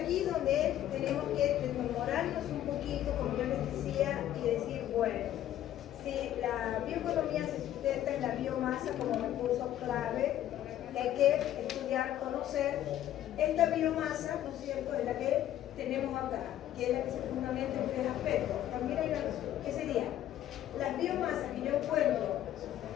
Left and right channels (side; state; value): right; quieter; 12.2 dB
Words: Bueno, si la bioeconomía se sustenta en la biomasa como recurso clave, hay que estudiar, conocer esta biomasa, ¿no es cierto?, es la que tenemos acá, que es la que se fundamenta en tres aspectos. También hay una, ¿qué sería? Las biomasas que yo encuentro